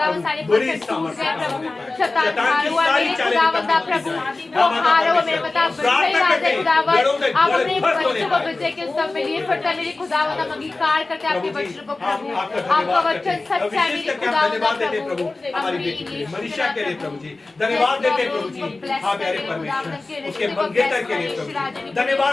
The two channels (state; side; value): quieter; right; 3.3 dB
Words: बड़ी सामर्थ्य शैतान की सारी चालें प्रभु वो हारो मेरे बता राजा खुदावंद, आप अपने बच्चों को विजय के उत्सव में लिए फिरता मेरे खुदावंद, हम अंगीकार करते हैं आपके वचन को प्रभु, आपका वचन सच्चा है मेरे खुदावंद प्रभु। हमारी बेटी के लिए मनीषा के लिए प्रभु जी धन्यवाद देते हैं प्रभु जी। हाँ प्यारे परमेश्वर, उसके मंगेतर के लिए प्रभु जी